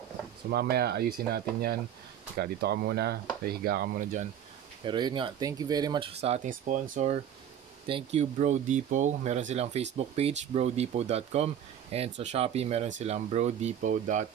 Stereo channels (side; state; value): left; quieter; 9.6 dB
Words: So mamaya ayusin natin yan. Dito ka muna, higa ka muna dyan. Pero yun nga, thank you very much sa ating sponsor. Thank you Bro Depot. Meron silang Facebook page, brodepot.com, and sa Shopee meron silang